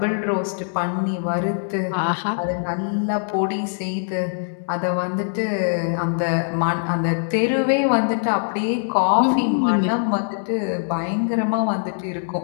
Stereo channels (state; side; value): silent; right; digital silence